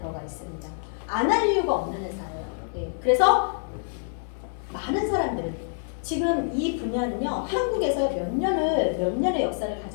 있습니다. 안 할 이유가 없는 회사예요. 네. 그래서 많은 사람들은 지금 이 분야는요, 한국에서 몇 년의 역사를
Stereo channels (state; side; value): silent; right; digital silence